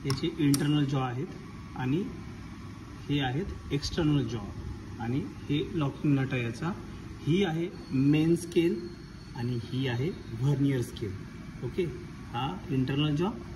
याचे इंटरनल जॉ आहेत आणि हे आहेत एक्सटर्नल जॉ आणि हे लॉकिंग नट आहे याचा। ही आहे मेन स्केल आणि ही आहे व्हर्नियर स्केल। ओके, हा इंटरनल जॉ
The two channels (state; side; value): identical; both; correlation 1.00